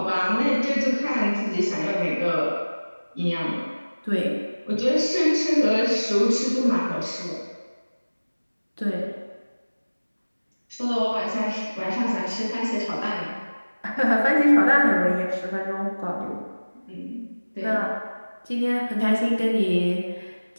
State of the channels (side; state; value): both; inverted; correlation -1.00